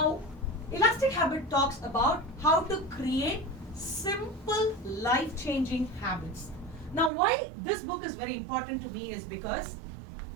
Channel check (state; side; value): drops out; left; at 7.1 s